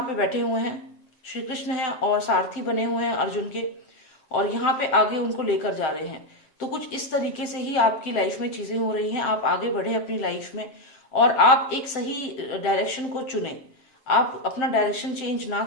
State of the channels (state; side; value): late; right; 7.7 ms